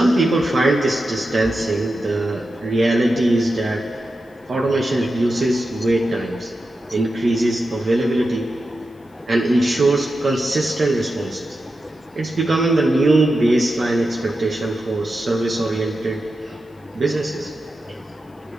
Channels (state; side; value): normal; both; correlation 0.90